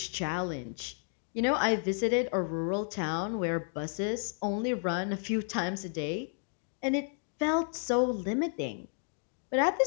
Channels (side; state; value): right; silent; 56 dB below the other